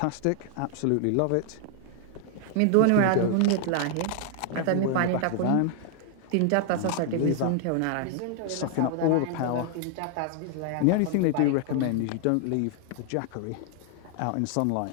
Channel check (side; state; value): both; different; correlation 0.00